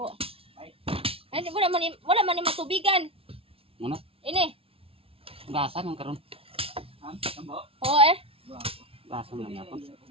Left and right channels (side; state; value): left; late; 0.27 ms